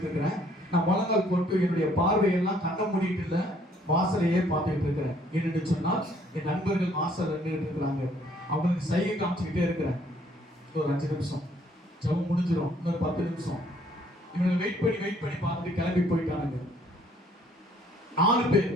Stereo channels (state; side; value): normal; both; correlation 0.63